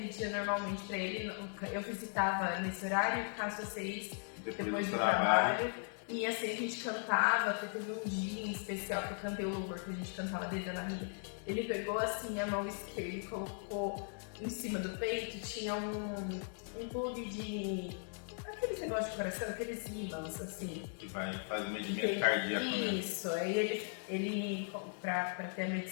dia normalmente pra ele, eu visitava nesse horário, caso 6, depois do trabalho. E assim a gente cantava, até teve um dia em especial que eu cantei o louvor que a gente cantava desde a Maria. Ele pegou assim a mão esquerda e colocou em cima do peito, tinha um plug de... aqueles negócios de coração, aqueles ímãs assim. Que faz o medimento cardíaco, né? Isso, aí ele pra ter a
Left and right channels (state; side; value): silent; right; 52 dB below the other